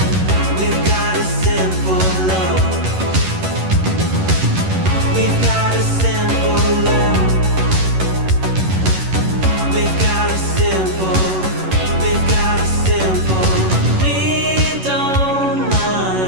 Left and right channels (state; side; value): late; left; 11 ms